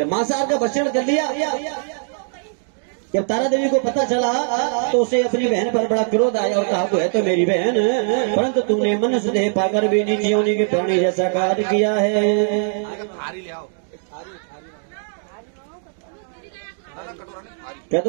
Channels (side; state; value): left; silent; digital silence